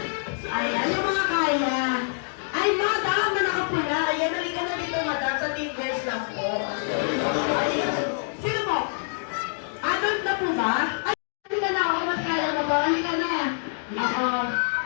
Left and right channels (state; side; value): silent; right; digital silence